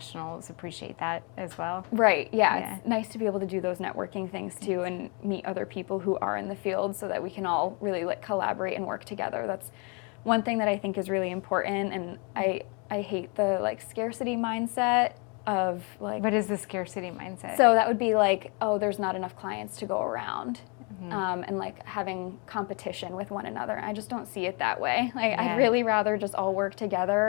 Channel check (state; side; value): quieter; right; 33.6 dB